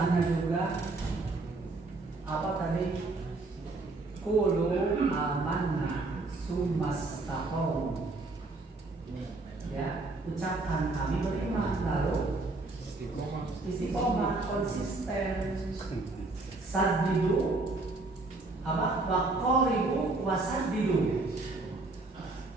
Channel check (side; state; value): left; quieter; 3.3 dB